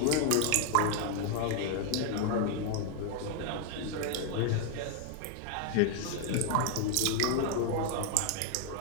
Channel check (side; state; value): both; different; correlation 0.00